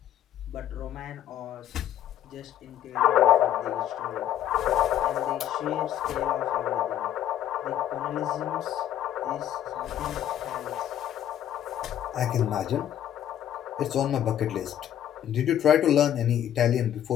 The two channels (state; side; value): quieter; right; 11.0 dB